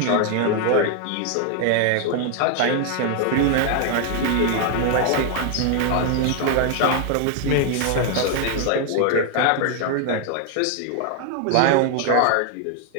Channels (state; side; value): different; both; correlation 0.00